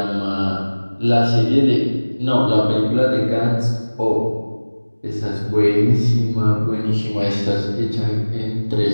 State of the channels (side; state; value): both; inverted; correlation -1.00